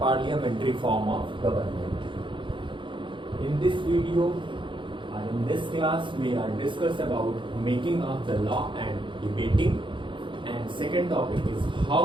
form of government. In this video or in this class we are discuss about making of the law and debating, and second topic is how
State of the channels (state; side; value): late; left; 0.24 ms